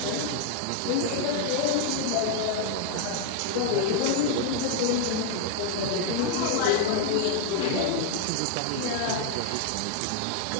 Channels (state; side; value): different; both; correlation 0.00